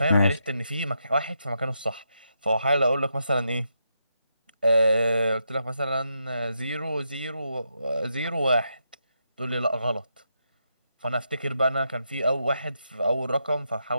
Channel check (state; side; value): inverted; both; correlation -0.82